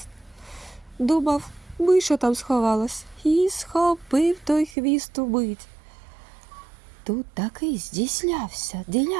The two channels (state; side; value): drops out; left; at 4.8 s